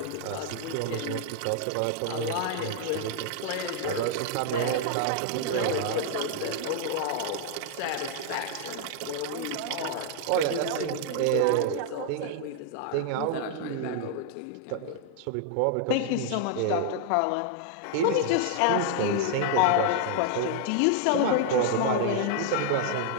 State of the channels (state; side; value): different; both; correlation 0.00